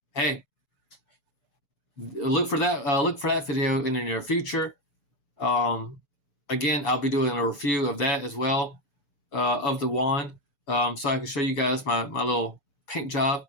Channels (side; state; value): right; late; 7.0 ms